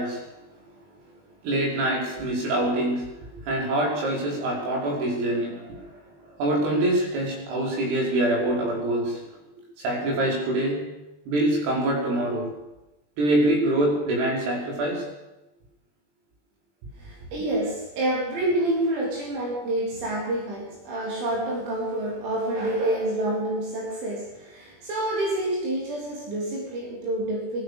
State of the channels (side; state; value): left; late; 20 ms